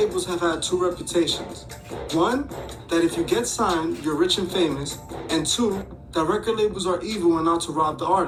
have had two reputations. One, that if you get signed, you're rich and famous. And two, that record labels are evil and out to rob the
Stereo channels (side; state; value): both; identical; correlation 1.00